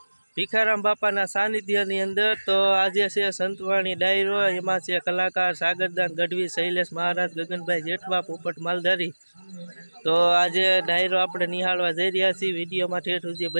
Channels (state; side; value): inverted; both; correlation -1.00